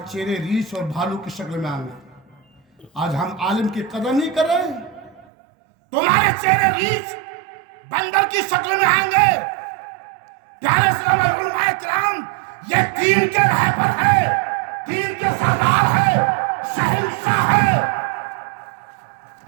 चेहरे रीछ और भालू की शक्ल में आएंगे। आज हम आलिम की कदर नहीं कर रहे, तुम्हारे चेहरे रीछ बंदर की शक्ल में आएंगे। प्यारे इस्लाम और उलमाए किराम, ये दीन के रहबर है, दीन के सरदार है, शहंशाह है।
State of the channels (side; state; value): left; drops out; at 5.2 s